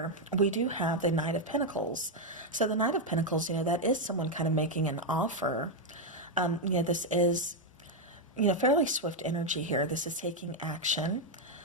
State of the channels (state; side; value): normal; both; correlation 0.01